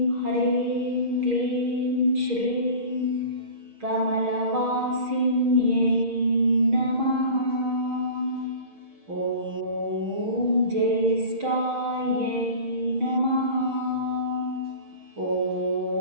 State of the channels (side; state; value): left; late; 6.3 ms